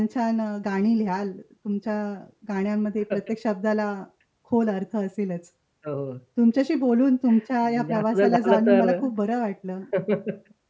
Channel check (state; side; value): identical; both; correlation 1.00